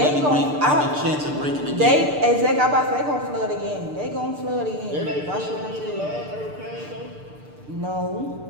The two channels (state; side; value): late; left; 6.7 ms